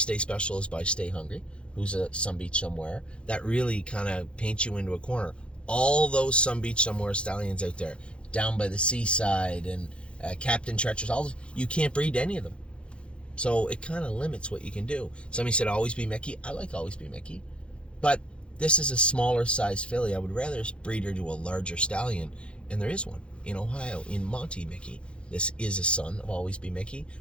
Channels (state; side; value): late; right; 0.058 ms